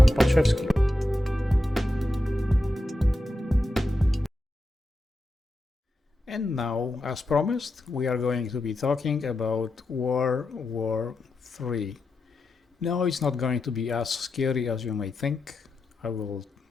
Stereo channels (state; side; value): normal; both; correlation 0.88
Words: Podszewski. And now, as promised, we are going to be talking about World War III. No, it's not going to be as scary as you may think. I will